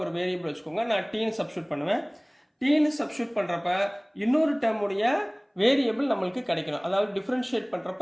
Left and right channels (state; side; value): identical; both; correlation 1.00